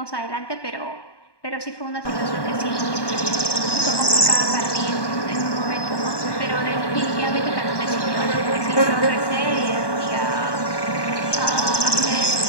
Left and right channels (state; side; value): late; right; 1.2 ms